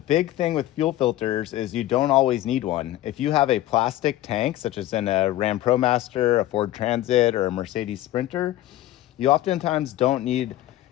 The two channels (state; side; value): quieter; right; 14.7 dB